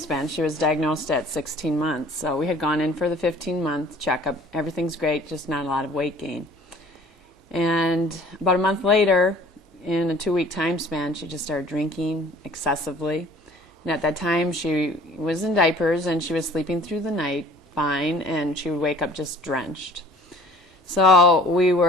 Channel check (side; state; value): both; normal; correlation 0.50